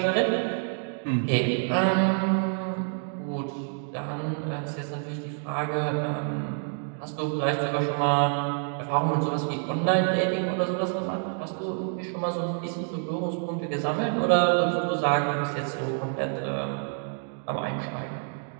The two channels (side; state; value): left; silent; 58 dB below the other